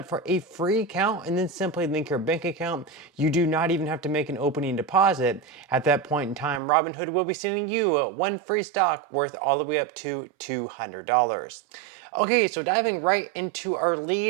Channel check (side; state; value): left; drops out; at 6.6 s